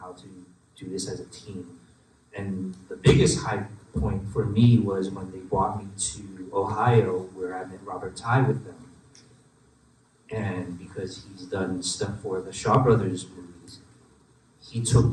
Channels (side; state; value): both; identical; correlation 1.00